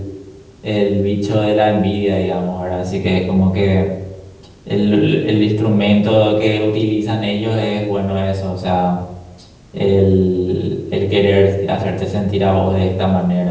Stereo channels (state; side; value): identical; both; correlation 1.00